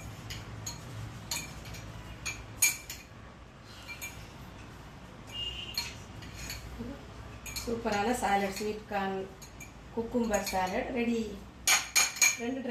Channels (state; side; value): identical; both; correlation 1.00